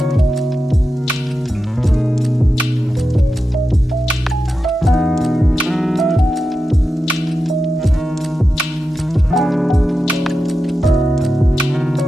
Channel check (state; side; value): normal; both; correlation 0.91